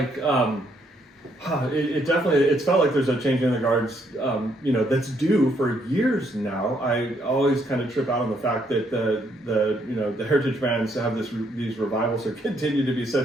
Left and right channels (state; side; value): normal; both; correlation 0.71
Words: it definitely it's felt like there's a change in the guards. That's due for years now. I always kind of trip out on the fact that the heritage brands have these revivals or continue to be